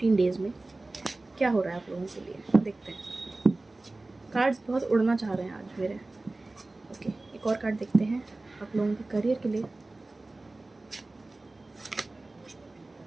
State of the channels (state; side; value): quieter; left; 3.0 dB